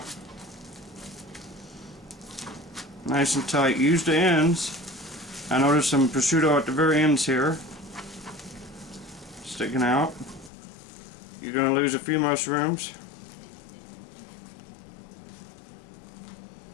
Nice and tight. Use the ends. I noticed some prosciutto at the very ends here sticking out. You're going to lose a few mushrooms.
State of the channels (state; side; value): drops out; right; at 10.5 s